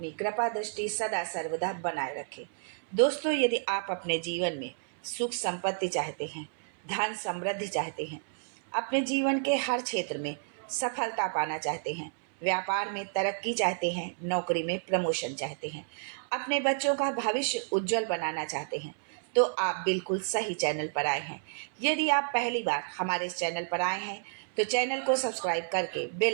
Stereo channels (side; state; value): left; silent; 57 dB below the other